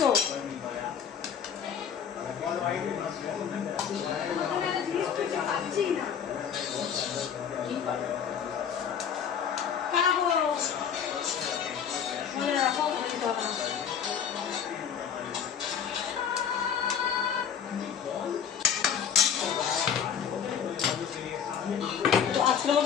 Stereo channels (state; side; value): quieter; right; 7.9 dB